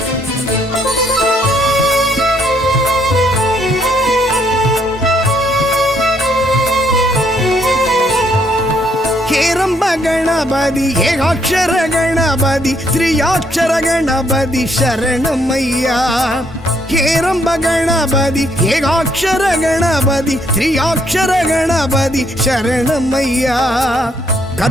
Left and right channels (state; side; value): normal; both; correlation 0.70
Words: ಹೇರಂಬ ಗಣಪತಿ ಏಕಾಕ್ಷರ ಗಣಪತಿ ತ್ರಿಯಾಕ್ಷರ ಗಣಪತಿ ಶರಣಮಯ್ಯ ಹೇರಂಬ ಗಣಪತಿ ಏಕಾಕ್ಷರ ಗಣಪತಿ ತ್ರಿಯಾಕ್ಷರ ಗಣಪತಿ ಶರಣಮಯ್ಯ